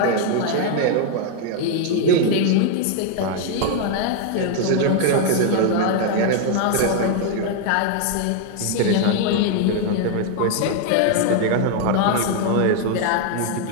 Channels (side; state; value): both; different; correlation 0.00